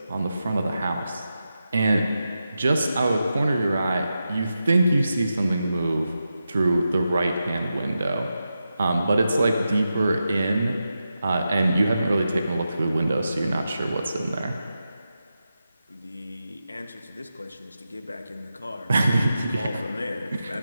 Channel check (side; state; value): both; inverted; correlation -0.89